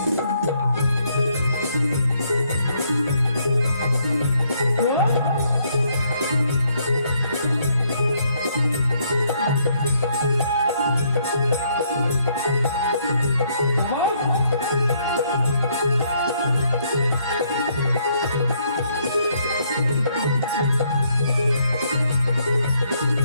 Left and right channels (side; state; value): both; inverted; correlation -0.71